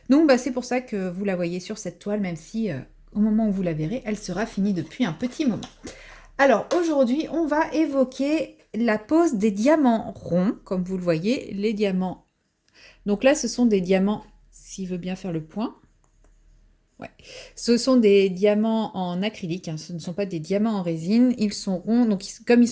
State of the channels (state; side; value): identical; both; correlation 1.00